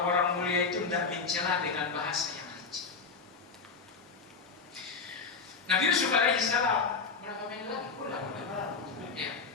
mulia itu tidak mencela dengan bahasa yang rinci. Nabi Yusuf alaihissalam, berapa menit lagi? Ya.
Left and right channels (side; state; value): right; quieter; 4.9 dB